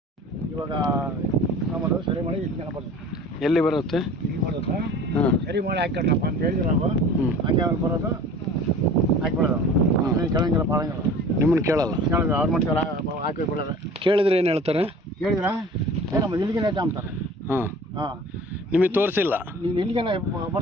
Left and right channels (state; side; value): normal; both; correlation 0.44